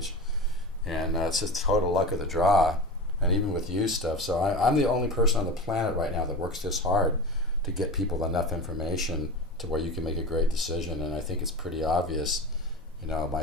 and it's just total luck of the draw, and even with used stuff. So I'm the only person on the planet right now that works this hard to get people enough information to where you can make a great decision. And I think it's pretty obvious, you know,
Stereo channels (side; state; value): both; normal; correlation 0.29